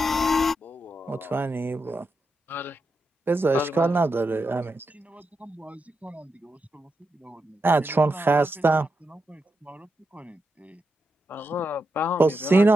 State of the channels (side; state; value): both; normal; correlation 0.86